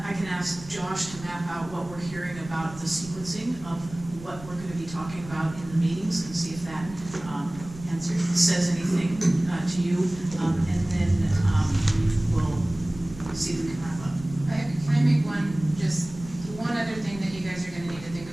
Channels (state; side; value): noise; right; rumble, 16 dB below the sound